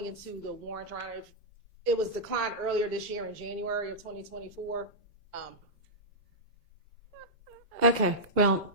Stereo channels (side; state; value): both; normal; correlation -0.10